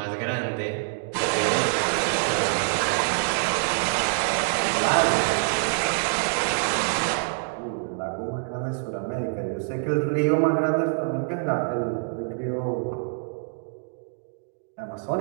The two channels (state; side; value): silent; left; digital silence